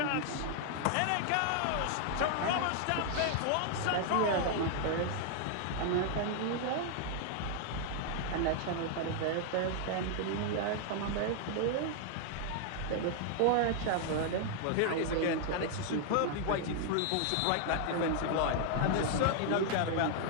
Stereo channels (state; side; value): different; both; correlation 0.00